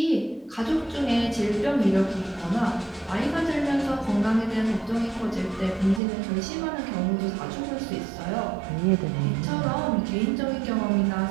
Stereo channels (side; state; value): left; drops out; at 6.0 s